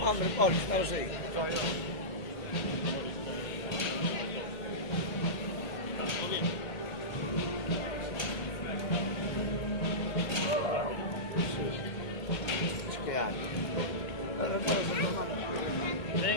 Hombre, Paul, estamos ahí.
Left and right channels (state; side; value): late; right; 1.8 ms